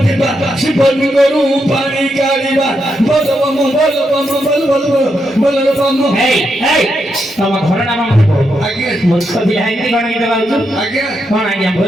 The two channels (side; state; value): both; normal; correlation 0.82